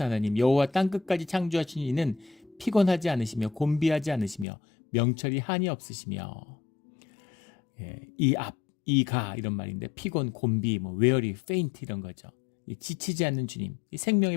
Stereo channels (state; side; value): drops out; right; at 4.5 s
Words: 하나님 여호와 땅끝까지 창조하신 이는 피곤하지 않으시며 곤비하지 않으시며 명철이 한이 없으시며 이가 이런 말인데 피곤, 곤비, weary, faint 이런 거죠. 지치지 않는 주님, 이 생명의